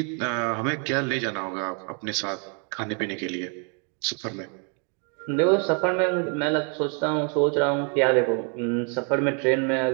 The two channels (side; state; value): left; quieter; 39.3 dB